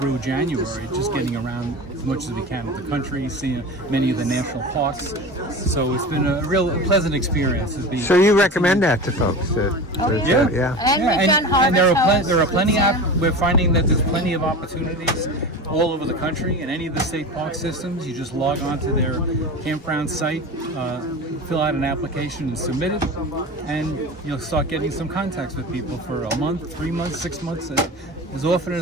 January, just getting around much as we can of the country, seeing many of the national parks. So it's been a real pleasant experience. So you recommend that to folks? Yeah. Yeah. And we've done and there harvest are plenty we're finding that there's plenty of opportunities all over the country in any of the state park systems. You just log on to their campground site, fill out an application and submit it, and you'll start getting some contacts with people for a month, 3 months, 6 months, as often or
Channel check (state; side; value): normal; both; correlation 0.31